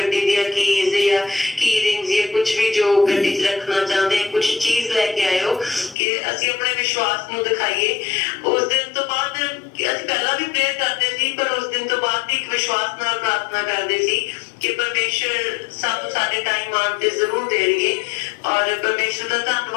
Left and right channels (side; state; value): right; drops out; at 6.0 s